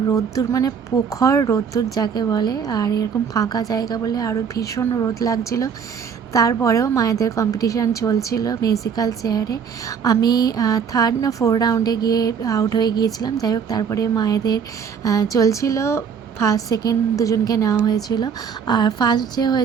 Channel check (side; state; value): left; quieter; 6.9 dB